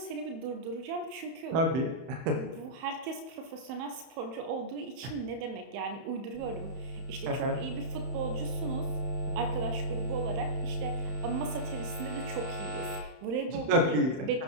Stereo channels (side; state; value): left; late; 31 ms